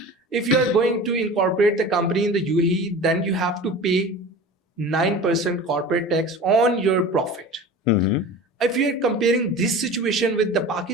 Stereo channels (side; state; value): both; normal; correlation 0.36